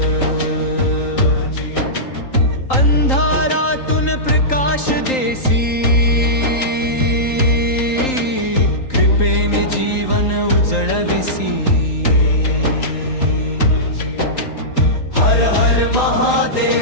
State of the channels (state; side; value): late; right; 3.8 ms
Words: अंधारातून प्रकाश देसी कृपेने जीवन उजळविसी हर हर